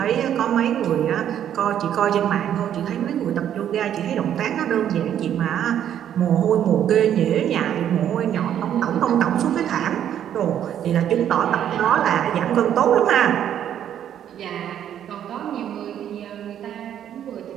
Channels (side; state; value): left; quieter; 10.1 dB